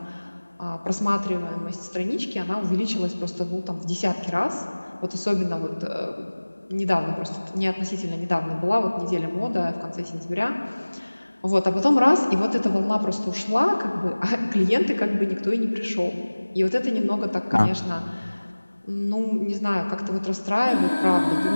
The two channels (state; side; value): inverted; both; correlation -1.00